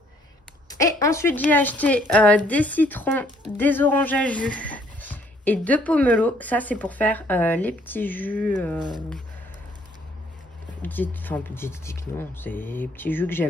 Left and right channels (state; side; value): normal; both; correlation 0.64